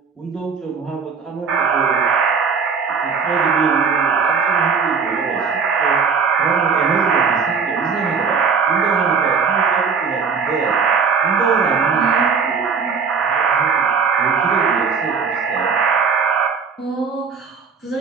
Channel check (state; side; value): quieter; left; 5.6 dB